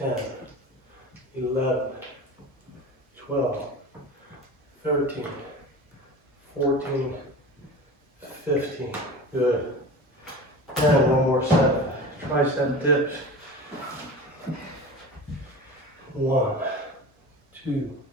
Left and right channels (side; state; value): both; normal; correlation 0.33